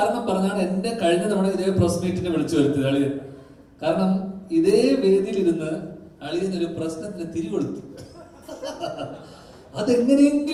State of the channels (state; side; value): identical; both; correlation 1.00